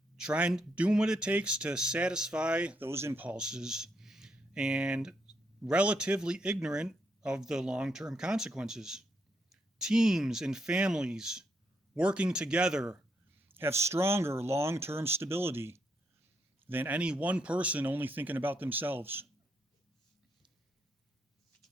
doing what it takes to satisfy those impulses, and relatively ignorant of the long-term consequences. Teams and families working together have stronger long-term stability than any one person only thinking about themselves.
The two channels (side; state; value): both; normal; correlation 0.78